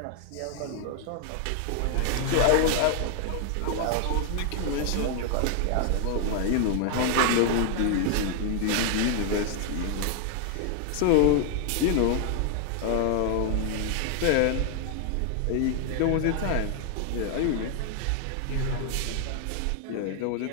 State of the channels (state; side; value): different; both; correlation 0.00